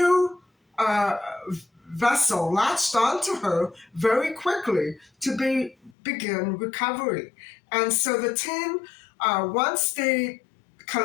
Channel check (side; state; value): right; drops out; at 6.0 s